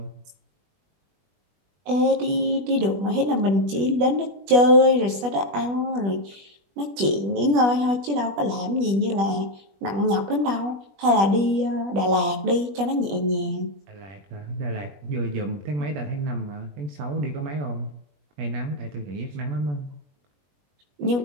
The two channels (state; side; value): late; left; 21 ms